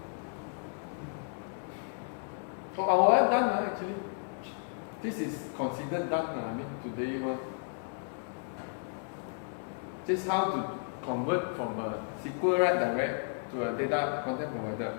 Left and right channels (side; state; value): right; silent; 56 dB below the other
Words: So our app done actually. This is considered done. I mean today one. Just how to convert from a SQLite direct to a data content provider.